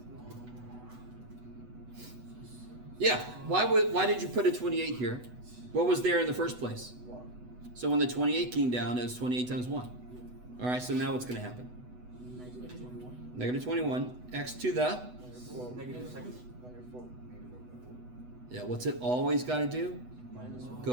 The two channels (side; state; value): left; late; 8.1 ms